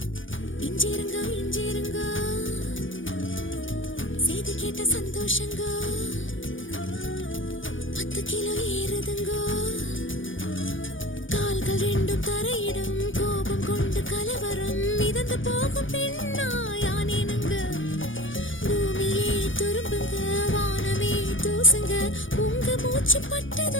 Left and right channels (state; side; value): late; right; 0.57 ms